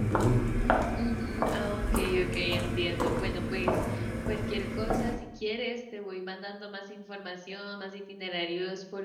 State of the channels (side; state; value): both; identical; correlation 1.00